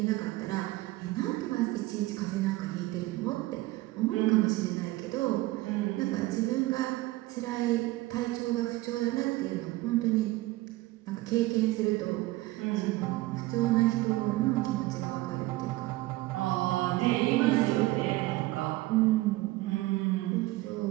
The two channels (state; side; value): quieter; left; 18.8 dB